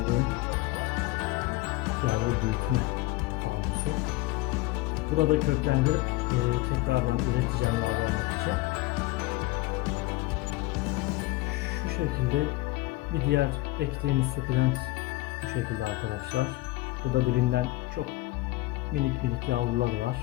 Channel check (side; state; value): right; quieter; 19.2 dB